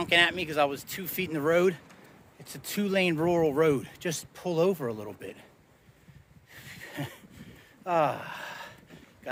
at me because I was 2 feet in the road, it's a 2-lane rural road. Just pull over a little bit.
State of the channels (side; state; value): both; identical; correlation 1.00